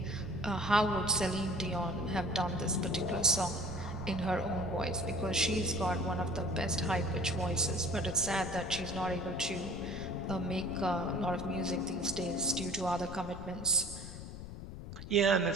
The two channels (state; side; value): noise; left; rumble, 11 dB below the sound